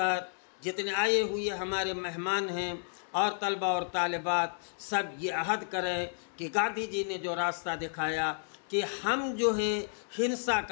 جتنے آئے ہوئے ہمارے مہمان ہیں اور طلبہ اور طالبات، سب یہ عہد کریں کہ گاندھی جی نے جو راستہ دکھایا کہ ہم جو ہے ہنسا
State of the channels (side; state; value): right; silent; 57 dB below the other